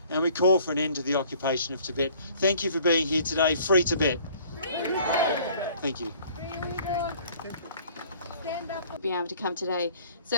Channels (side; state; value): both; inverted; correlation -0.55